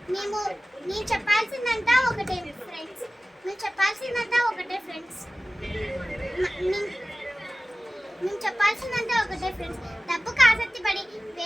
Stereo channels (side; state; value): both; normal; correlation 0.97